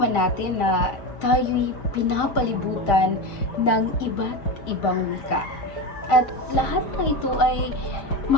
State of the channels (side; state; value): right; late; 5.0 ms